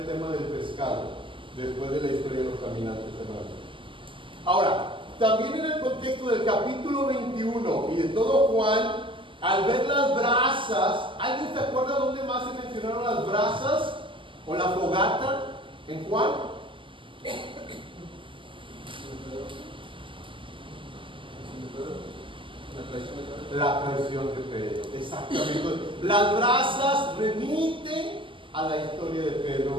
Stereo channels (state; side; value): late; left; 0.25 ms